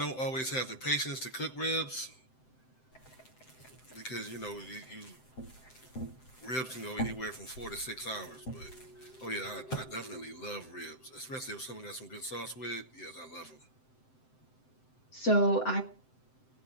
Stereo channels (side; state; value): right; late; 7.8 ms